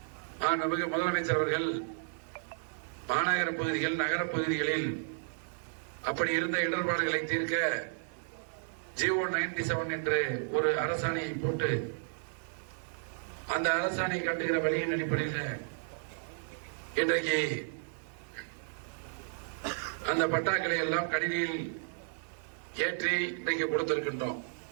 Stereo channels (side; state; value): left; silent; digital silence